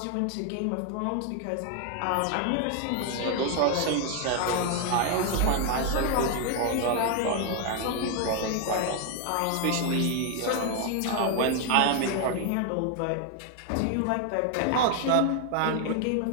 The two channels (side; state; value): both; different; correlation 0.00